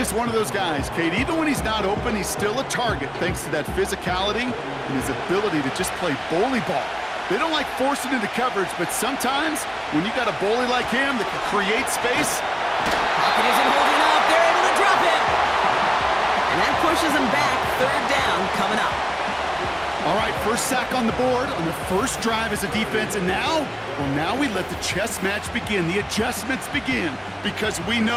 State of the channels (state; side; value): identical; both; correlation 1.00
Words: one of those guys, Kate. Even when he's not open, he's still a target thanks to that physicality and his ability to just play bully ball. They don't like forcing into coverage, but sometimes when you got a bully like him that can create space. Pocket isn't holding up. They're able to drop him. And that pushes him back. 3rd down coming up. All right, first sack on the board on the first drive as a defense, and now, well, now we let the chess match begin, the adjustments begin, because we